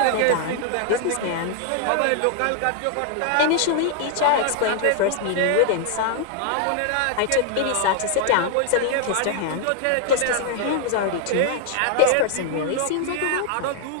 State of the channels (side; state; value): both; different; correlation 0.00